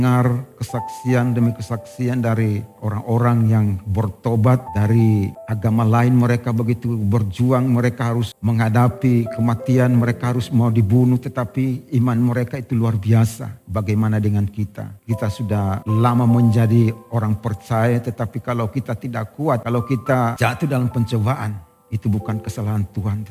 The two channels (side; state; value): both; identical; correlation 1.00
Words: kesaksian demi kesaksian dari orang-orang yang bertobat dari agama lain. Mereka begitu berjuang, mereka harus menghadapi kematian, mereka harus mau dibunuh, tetapi iman mereka itu luar biasa. Bagaimana dengan kita? Kita sudah lama menjadi orang percaya, tetapi kalau kita tidak kuat, kalau kita jatuh dalam pencobaan, itu bukan kesalahan Tuhan,